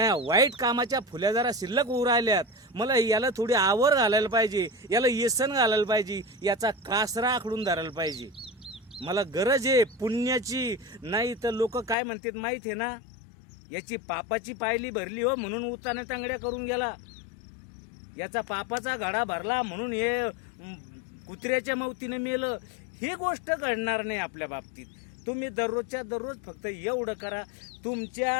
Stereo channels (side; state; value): right; drops out; at 12.0 s